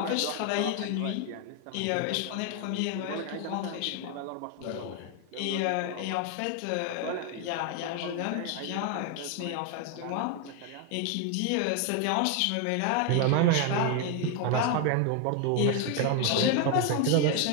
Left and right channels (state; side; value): different; both; correlation 0.01